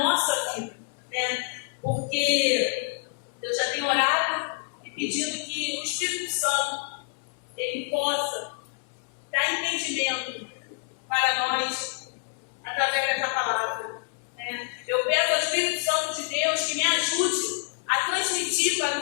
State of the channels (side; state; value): right; silent; 60 dB below the other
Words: vida. Né? Porque eu já tenho orado e pedido que o Espírito Santo ele possa dar entendimento para nós através dessa palavra. Né? Eu peço ao Espírito Santo de Deus que me ajude a transmitir